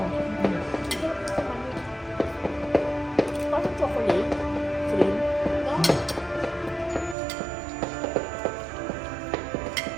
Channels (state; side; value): drops out; left; at 7.2 s